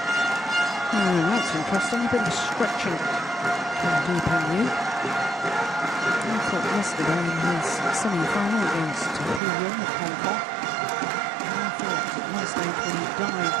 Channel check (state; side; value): drops out; left; at 9.4 s